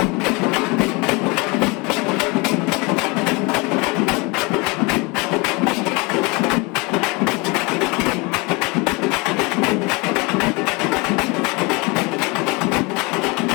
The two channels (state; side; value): quieter; right; 27.1 dB